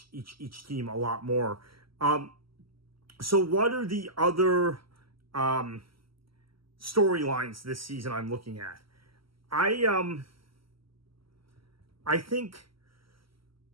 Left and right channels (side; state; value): left; late; 0.75 ms